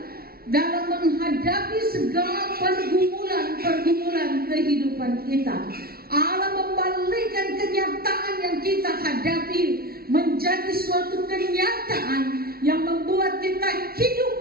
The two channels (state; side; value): late; left; 0.44 ms